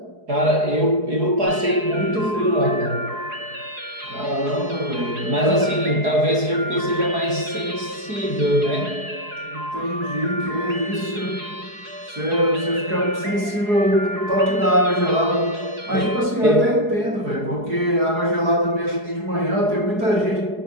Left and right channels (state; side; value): late; left; 4.7 ms